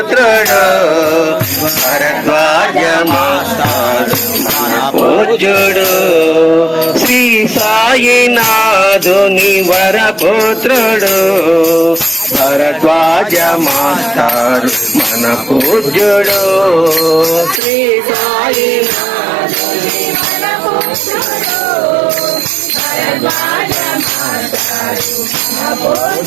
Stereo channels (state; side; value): drops out; left; at 17.6 s